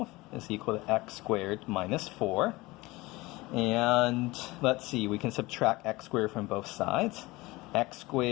is equal to x squared minus 4. And let's see, we can subtract x squared from both sides. X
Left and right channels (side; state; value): right; quieter; 21.2 dB